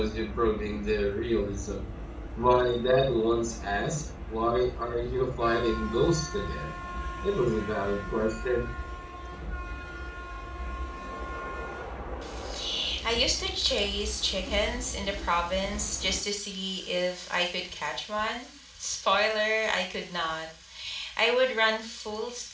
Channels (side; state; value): both; identical; correlation 1.00